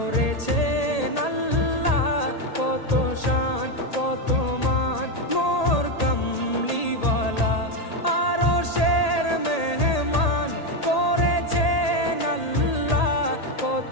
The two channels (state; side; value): late; right; 1.8 ms